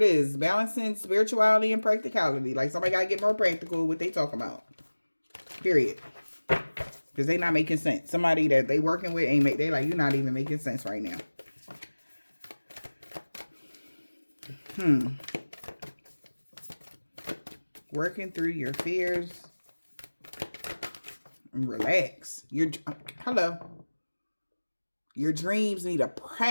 is. Balancing spirituality and practicality. Like, somebody got to get more practical with what they talking about. Period. Because they not making sense. Somebody that they working with ain't they like, you're not even making sense right now. Working through your fears. And relax. Hello. Your dreams need a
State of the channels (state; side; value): inverted; both; correlation -1.00